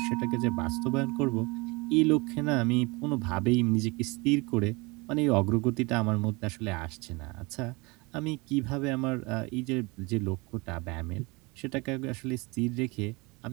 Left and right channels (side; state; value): left; quieter; 26.3 dB